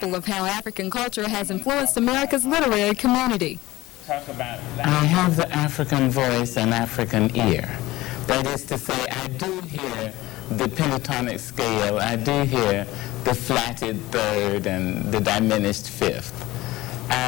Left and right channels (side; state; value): right; quieter; 18.3 dB